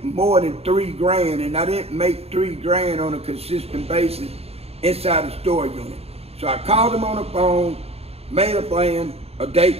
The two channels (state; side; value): late; left; 0.29 ms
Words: more than $3 grand, and I didn't make $3 grand on a consistent basis inside the store unit. So I called him on the phone, made a plan, a date